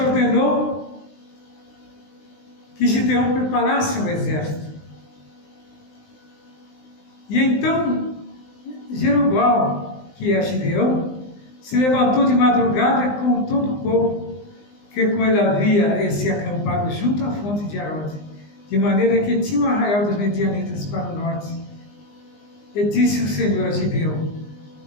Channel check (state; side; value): late; right; 20 ms